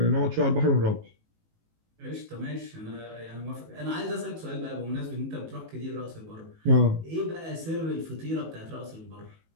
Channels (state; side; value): late; left; 19 ms